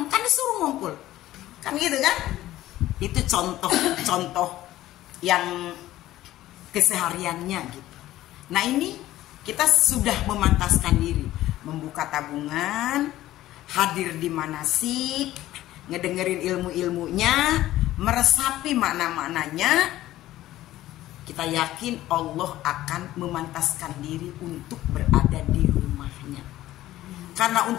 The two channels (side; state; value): right; quieter; 14.9 dB